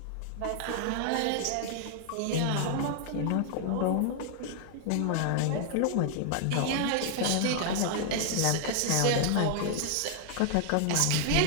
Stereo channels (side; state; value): both; different; correlation 0.00